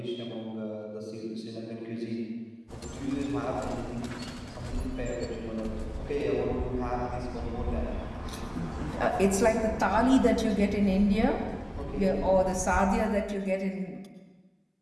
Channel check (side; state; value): both; identical; correlation 1.00